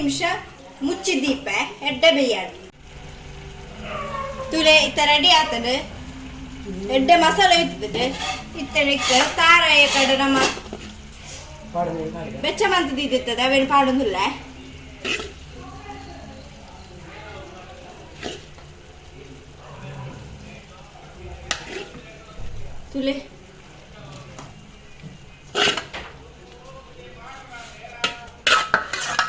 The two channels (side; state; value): both; identical; correlation 1.00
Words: ಮುಚ್ಚಿದೀಪೆ ಎಡ್ಡೆ ಬೇಯ್ಯಾಡು ತುಲೆ ಇತ್ತ ರೆಡಿ ಆತಡು ಎಡ್ಡೆ ಮಸಾಲೆ ಇತ್ತದು ಇತ್ತನಿಕ್ಕೆ ತಾರಾಯ ಕಡೆ ನಮ್ಮ ಬೆಚ್ಚ ಮಂತದಿತ್ತದ ಅವೇನು ಪಾಡೊಂದುಲ್ಲ ತುಲೆ